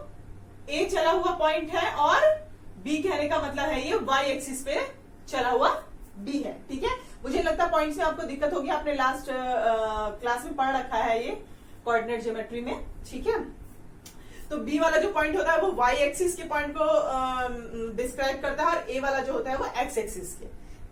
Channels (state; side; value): identical; both; correlation 1.00